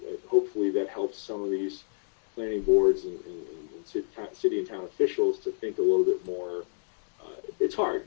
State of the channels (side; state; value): right; silent; digital silence